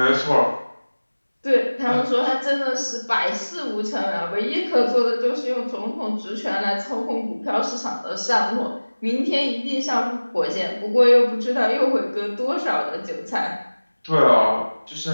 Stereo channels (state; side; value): inverted; both; correlation -1.00